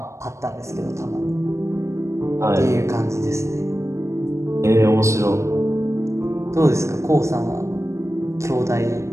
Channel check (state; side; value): late; left; 0.14 ms